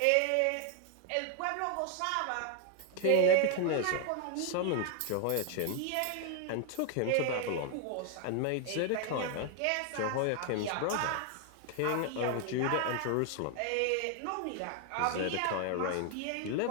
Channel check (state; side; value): different; both; correlation 0.00